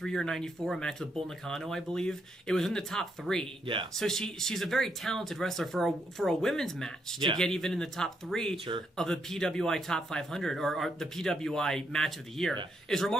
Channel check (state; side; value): normal; both; correlation 0.77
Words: or 94, a match with Bull Nakano, I believe, it was in the top 3. Yeah. So she's a very talented wrestler for a women's match to get even in the top 3 of the PWI Top 500 or the PWI Match of the Year is